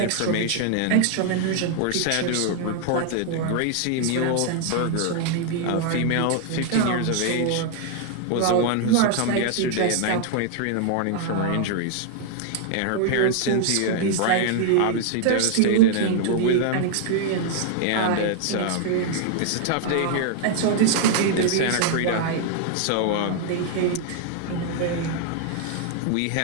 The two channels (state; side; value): different; both; correlation 0.00